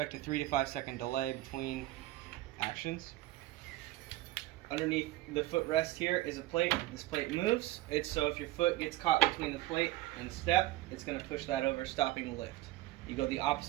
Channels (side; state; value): left; quieter; 17.3 dB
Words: a 3 to 5 second delay between actions. Underneath the footrest here is a plate. This plate moves. It's so if your foot gets caught between the plate and the step, it's going to push that over, stopping the lift. You go the